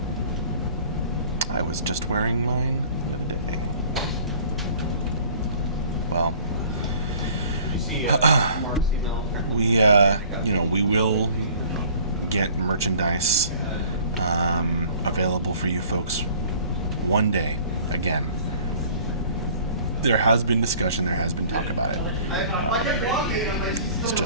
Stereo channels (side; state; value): both; inverted; correlation -0.51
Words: I was just wearing mine the other day. Well, we will get merchandise available for you folks one day again. There has been discussion, there has been talk about it. It's